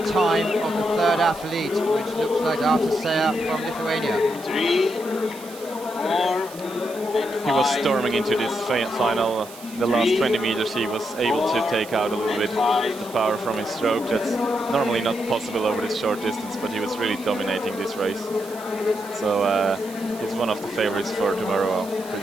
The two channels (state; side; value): noise; right; hiss, 18 dB below the sound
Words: time of the 3rd athlete, which looks like Artur Seya from Lithuania. 3, 4, He was storming into this final. The last 20 meters he was able to take out a little bit of the power from his stroke. That's normally not possible over this short distance, but he was really dominating this race. So he's one of the favorites for tomorrow, I'm